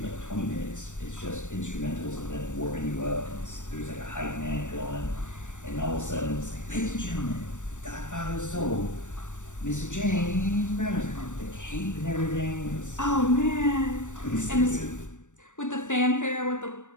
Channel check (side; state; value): right; late; 0.85 ms